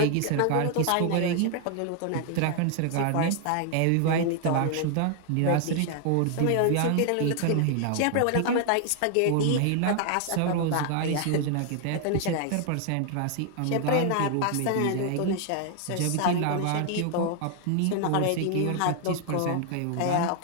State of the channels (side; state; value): both; different; correlation 0.00